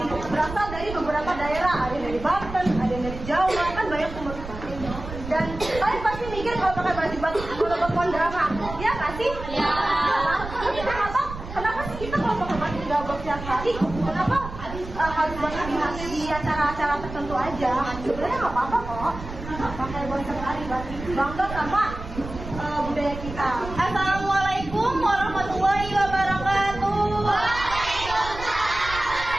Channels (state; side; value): noise; right; rumble, 11 dB below the sound